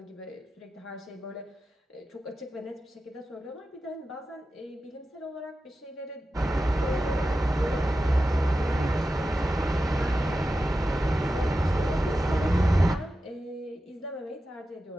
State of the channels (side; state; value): both; normal; correlation 0.92